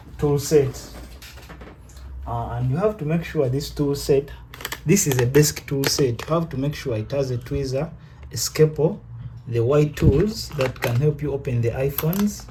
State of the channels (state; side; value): identical; both; correlation 1.00